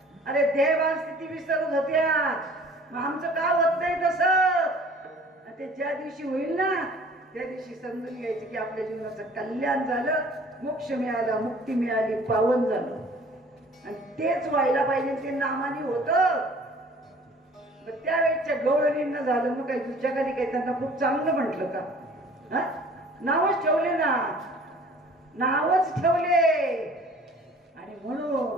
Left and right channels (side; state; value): both; normal; correlation 0.50